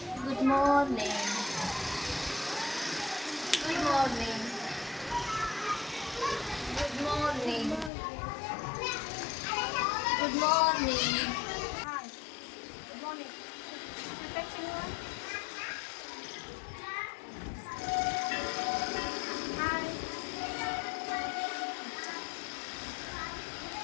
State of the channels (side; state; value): right; drops out; at 7.9 s